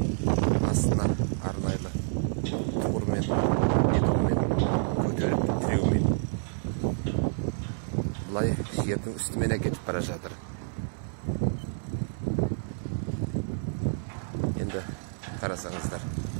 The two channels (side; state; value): left; silent; 59 dB below the other